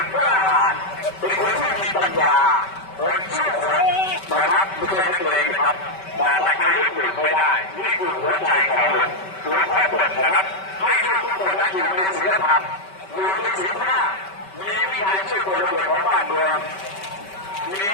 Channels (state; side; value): late; right; 5.2 ms